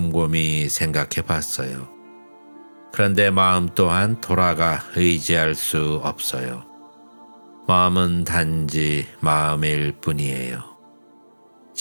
생각해 봤어요. 그런데 마음 또한 돌아가 의지할 수 없어요. 마음은 단지 마음일 뿐이에요.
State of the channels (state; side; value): inverted; both; correlation -1.00